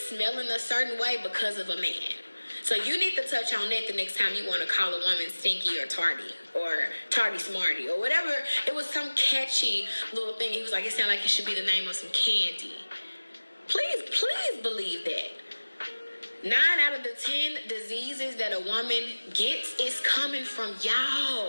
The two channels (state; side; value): inverted; both; correlation -1.00